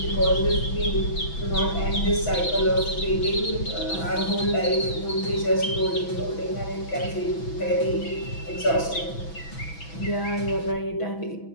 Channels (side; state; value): right; late; 6.1 ms